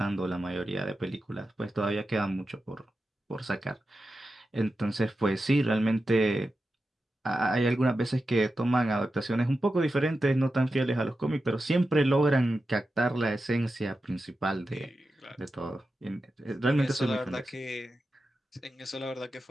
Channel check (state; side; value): normal; both; correlation 0.91